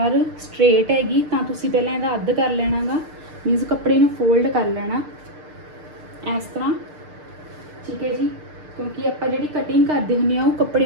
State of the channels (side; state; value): left; late; 6.6 ms